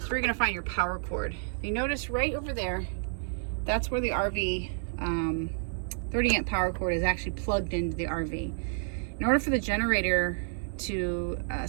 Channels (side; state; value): left; silent; 58 dB below the other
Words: So you're going to find your power cord. If you notice right over there, that's where the RV 30 amp power cord is actually plugged into the RV. In order for the generator to